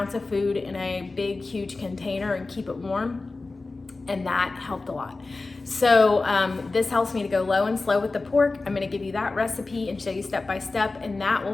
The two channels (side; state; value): right; quieter; 3.5 dB